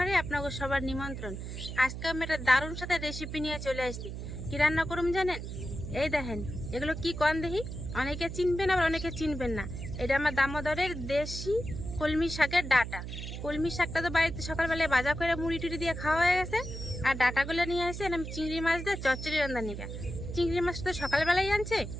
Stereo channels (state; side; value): noise; right; hum, 7 dB below the sound